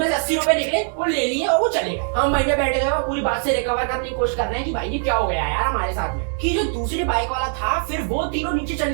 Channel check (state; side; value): silent; left; 64 dB below the other